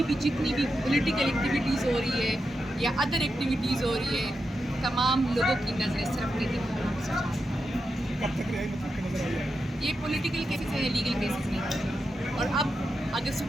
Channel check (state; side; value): normal; both; correlation 0.87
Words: بھی جتنی بھی پولیٹیکل ایکٹیویٹیز ہو رہی ہے یا ادر ایکٹیویٹیز ہو رہی ہے تمام لوگوں کی نظریں صرف قیدی پر ہیں۔ کب تک رہائی مطلب کہ نظر آئی ہے؟ یہ پولیٹیکل کیسز ہیں، لیگل کیسز نہیں ہیں، اور اب اگر